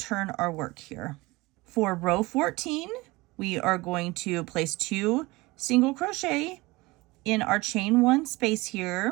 our work here. For row 14, we are going to place 2 single crochet in our chain 1 space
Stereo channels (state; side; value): quieter; left; 22.0 dB